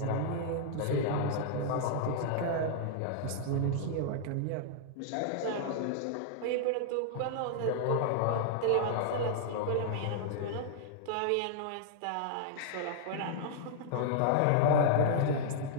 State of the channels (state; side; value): different; both; correlation -0.01